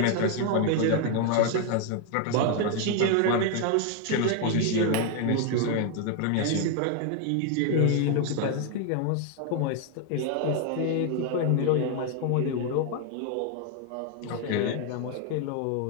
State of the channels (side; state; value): both; different; correlation 0.01